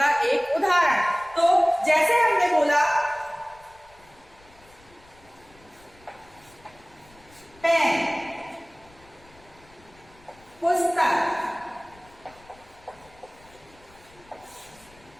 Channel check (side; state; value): left; noise; rumble, 27 dB below the sound